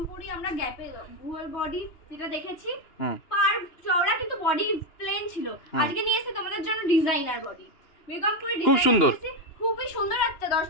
আমরা গ্যাপে ভুয়ার বডি যেটা দেখেছি, পার চওড়া কিন্তু বডি প্লেন ছিল। আজকে নিয়ে এসেছি তোমাদের জন্য ডিজাইনার বডি। বেগমপুরি খুব সুন্দর, খুবই সুন্দর। একটা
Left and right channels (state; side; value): late; right; 2.9 ms